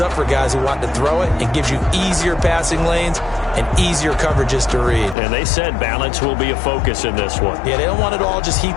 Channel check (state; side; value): drops out; right; at 5.2 s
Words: up for guys who want to throw it and gives you easier passing lanes and easier coverages to read. And they said balance will be a focus in this one. Yeah, they don't want it all just